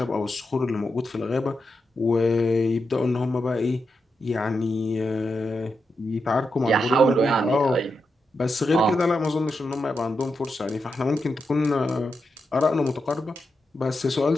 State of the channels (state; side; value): normal; both; correlation 0.86